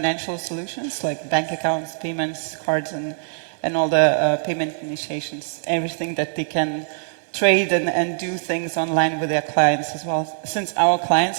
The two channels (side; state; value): left; silent; 64 dB below the other